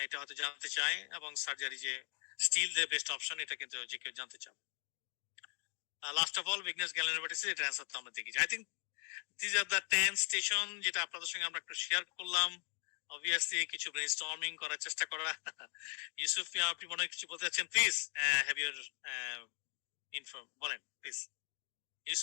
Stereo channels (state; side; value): quieter; right; 37.7 dB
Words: এটা হয়তো জানতে চায়, এবং সার্জারি যে স্টিল দ্য বেস্ট অপশন, এটা কিন্তু যে কেউ জানতে চান। লাস্ট অফ অল উইকনেস গ্যালেনোপ্যাথি, এটা অ্যান্সার তো আমরা দেখেছি। I think this are the 10 station যেটা আপনাদের সঙ্গে আমরা একটু শেয়ার করলাম। অবভিয়াসলি কিছু ব্রেইনস্টর্মিং করার চেষ্টা করা। ইউসুফ, আপনি মনে হয় কিছু বলতে চাচ্ছেন, প্লিজ হ্যাভ ইউর ইনফর্ম, বলেন please.